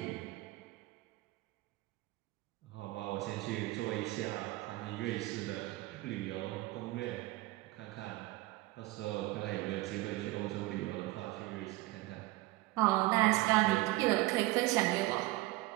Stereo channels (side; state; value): left; quieter; 19.5 dB